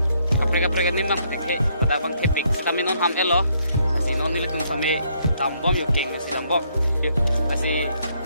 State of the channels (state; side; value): inverted; both; correlation -0.71